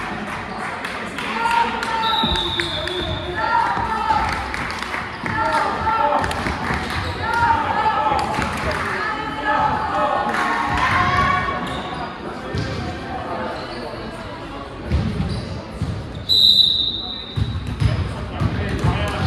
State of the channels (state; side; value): identical; both; correlation 1.00